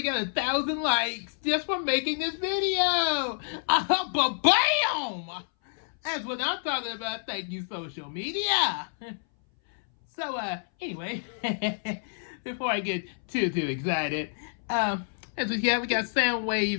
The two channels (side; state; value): right; silent; 59 dB below the other